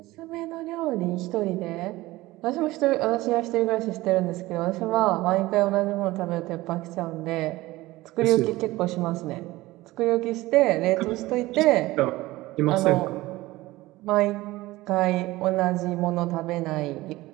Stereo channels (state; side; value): quieter; left; 18.7 dB